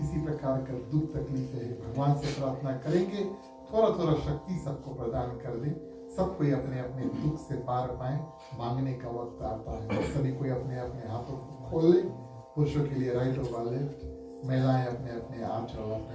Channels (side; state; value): both; identical; correlation 1.00